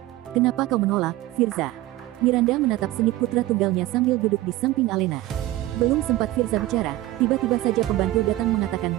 Kenapa kau menolak, Firza? Miranda menatap sengit putra tunggalnya sambil duduk di samping Alena. Belum sempat Firza bicara, tiba-tiba saja pembantu datang mengatakan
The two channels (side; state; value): left; quieter; 16.7 dB